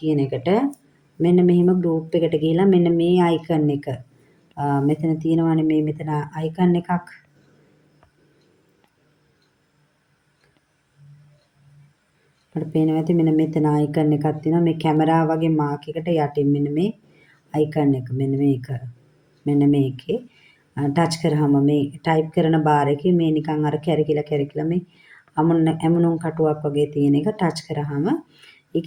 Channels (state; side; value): identical; both; correlation 1.00